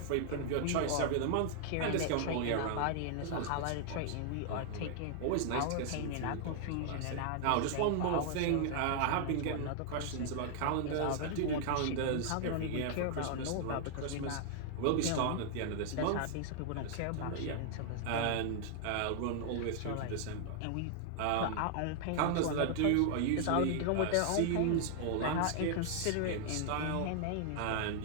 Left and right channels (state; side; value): different; both; correlation 0.00